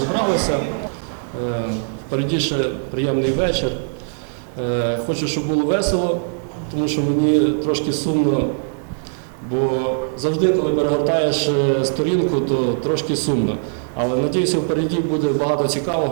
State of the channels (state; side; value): silent; left; 64 dB below the other